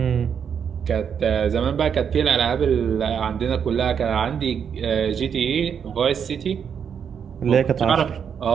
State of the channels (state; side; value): quieter; left; 7.4 dB